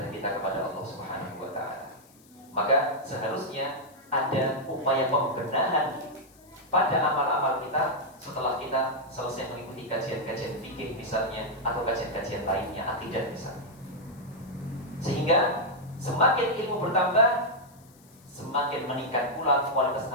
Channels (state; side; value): noise; left; hiss, 28 dB below the sound